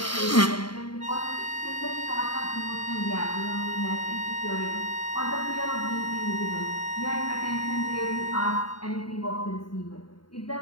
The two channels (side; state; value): right; late; 0.72 ms